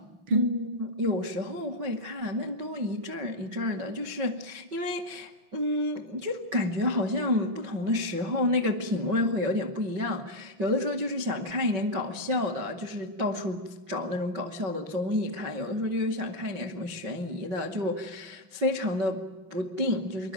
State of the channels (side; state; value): left; late; 5.3 ms